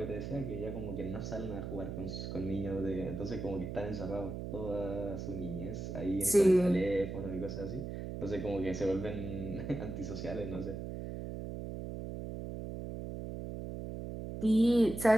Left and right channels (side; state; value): right; noise; hum, 6 dB below the sound